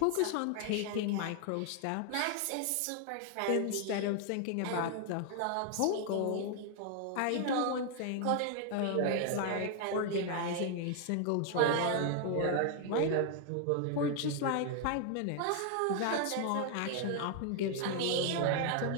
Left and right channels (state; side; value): different; both; correlation 0.00